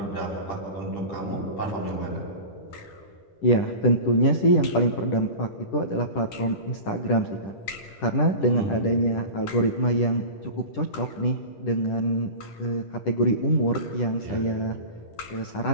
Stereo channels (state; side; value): late; right; 10 ms